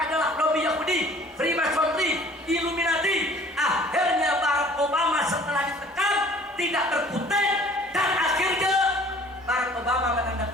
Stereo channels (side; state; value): both; normal; correlation 0.52